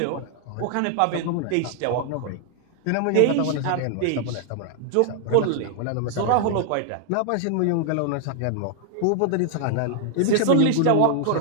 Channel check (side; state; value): both; different; correlation 0.00